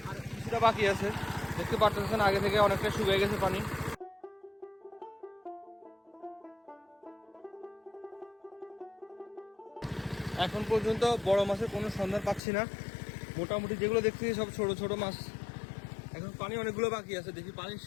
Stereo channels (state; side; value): drops out; right; at 12.4 s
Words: আর কিছুটা বাকি আছে। দেখতে পাচ্ছেন আগে থেকে অনেকটা শুকিয়ে গেছে পানি। এখন পর্যন্ত বড় মাছের কোনো সন্ধান পাচ্ছি না, মোটামুটি যেগুলো দেখছি সব ছোট ছোট মাছ। এখন পানি অনেকগুলো বাকি আছে, দেখি পানি